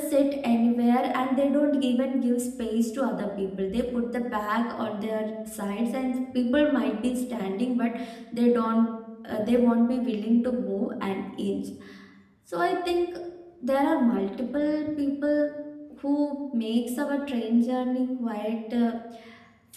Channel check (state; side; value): identical; both; correlation 1.00